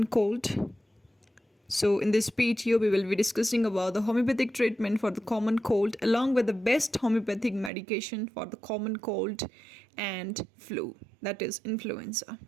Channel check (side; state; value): left; drops out; at 7.7 s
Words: cold? So, in this video, we will be discussing about the homeopathic treatment for the common cold along with the best homeopathic medication for the common cold and flu, that is influenza.